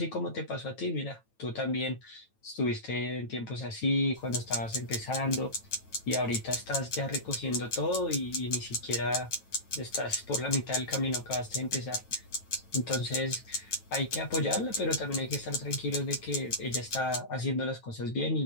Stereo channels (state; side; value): late; right; 9.1 ms